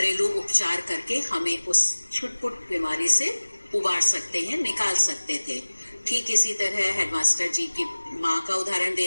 उपचार करके हमें उस छुटपुट बीमारी से उबार सकते हैं, निकाल सकते थे। ठीक इसी तरह हेडमास्टर जी की माँ का उदाहरण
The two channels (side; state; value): both; inverted; correlation -1.00